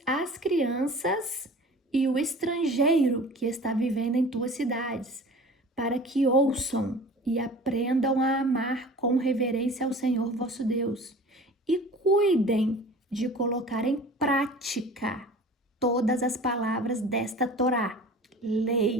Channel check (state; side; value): normal; both; correlation 0.42